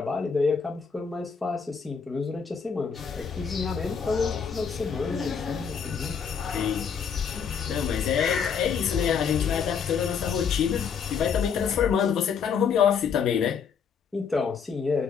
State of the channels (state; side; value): quieter; right; 6.6 dB